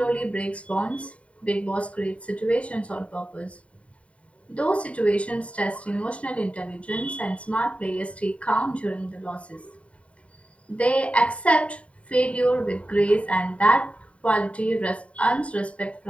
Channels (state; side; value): late; right; 0.064 ms